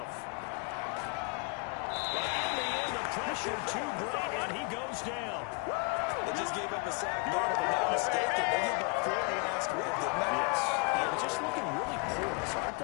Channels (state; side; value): quieter; right; 33.8 dB